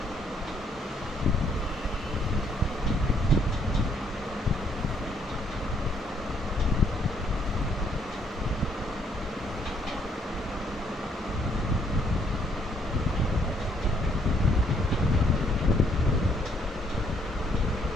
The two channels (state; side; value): normal; both; correlation 0.68